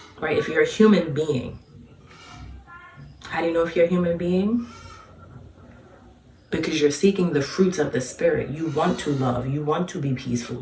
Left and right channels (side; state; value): both; identical; correlation 1.00